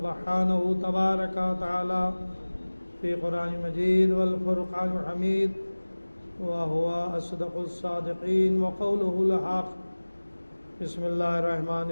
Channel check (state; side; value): inverted; both; correlation -1.00